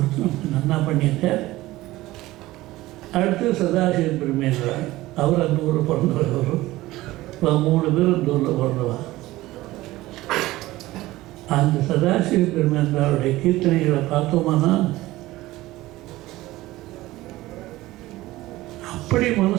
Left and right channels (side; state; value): left; quieter; 17.6 dB